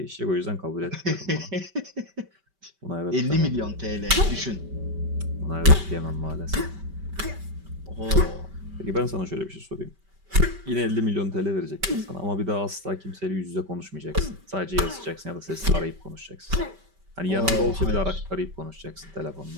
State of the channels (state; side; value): late; left; 5.1 ms